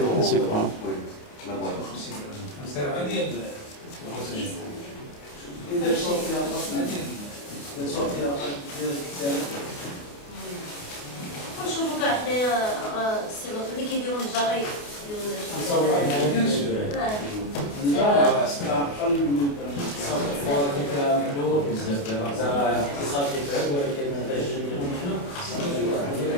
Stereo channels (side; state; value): right; late; 29 ms